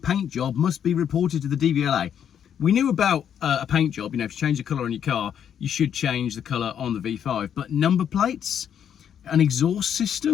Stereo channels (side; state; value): right; quieter; 8.8 dB